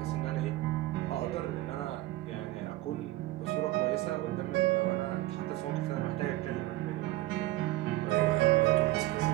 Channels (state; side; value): quieter; left; 17.2 dB